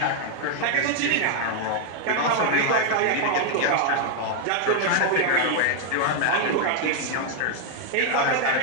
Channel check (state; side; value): different; both; correlation 0.00